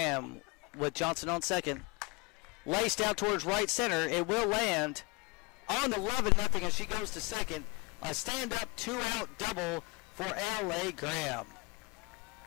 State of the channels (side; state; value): right; quieter; 28.1 dB